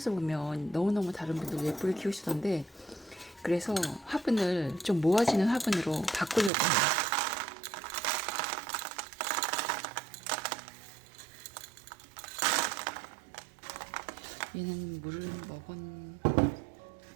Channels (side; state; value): left; drops out; at 6.5 s